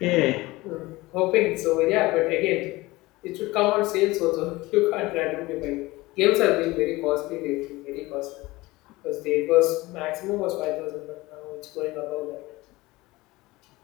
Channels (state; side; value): quieter; right; 20.4 dB